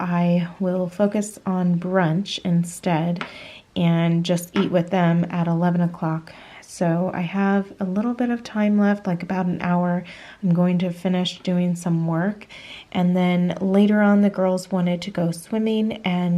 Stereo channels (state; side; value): identical; both; correlation 1.00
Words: will focus on brunch instead and just eat with them at 11 o'clock. So I have a little bit of time left, like about an hour. I'm going to finish doing some work. And then later on, the girls wanted to go swimming,